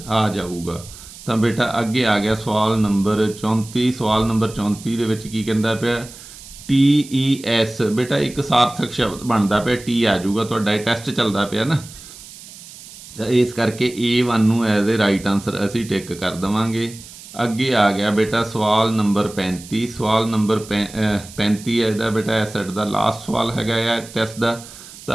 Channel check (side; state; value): right; noise; hiss, 17 dB below the sound